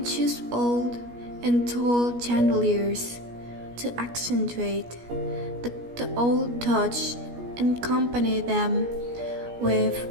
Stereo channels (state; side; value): late; left; 17 ms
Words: choose old and tall chandeliers to accentuate the old touch and accompany them with